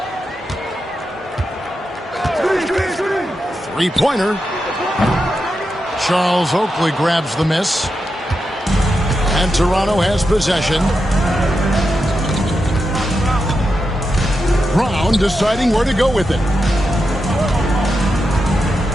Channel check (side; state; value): both; normal; correlation 0.87